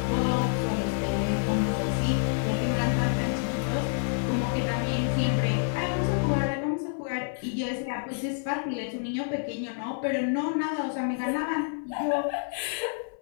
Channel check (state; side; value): silent; right; 56 dB below the other